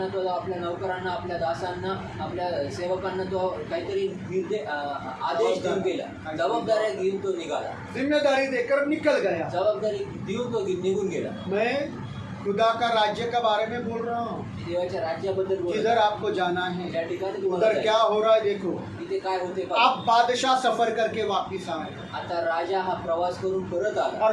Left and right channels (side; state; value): both; identical; correlation 1.00